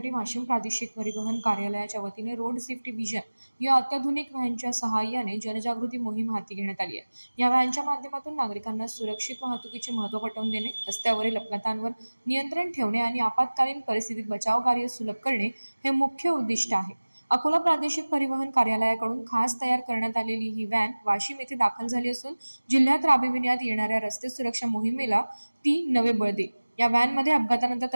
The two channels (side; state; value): both; inverted; correlation -1.00